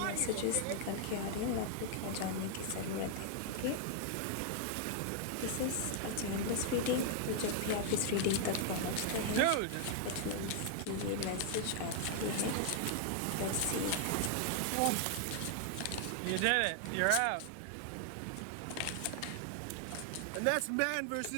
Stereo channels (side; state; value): both; different; correlation 0.00